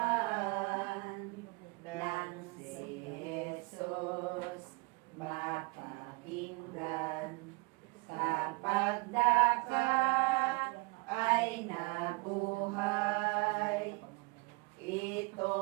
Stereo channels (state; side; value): quieter; left; 27.9 dB